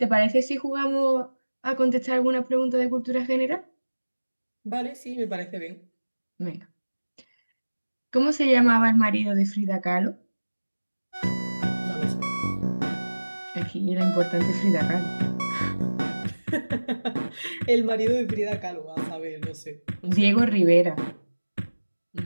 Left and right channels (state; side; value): inverted; both; correlation -1.00